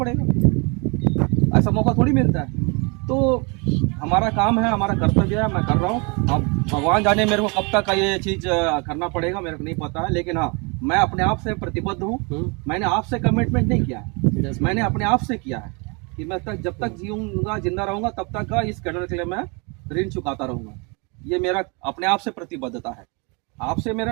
ऐसा मौका थोड़ी मिलता है। तो हमारा काम है, हमारा कर्तव्य है, मैं कर रहा हूँ। अब भगवान जाने मेरे को कब तक ये चीज़ करना पड़ेगा मेरे को नहीं पता है, लेकिन हाँ मैं अपने आप से प्रतिबद्ध हूँ। मैंने आपसे कमिटमेंट नहीं किया है, मैंने अपने आप से किया है कि मैं जब तक जीऊँगा जिंदा रहूँगा तब तक का इस कैडर के लिए मैं ऋण चुकाता रहूँगा। ये मेरा अपने आप से प्रतिबद्धता है, आपसे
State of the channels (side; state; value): left; quieter; 31.5 dB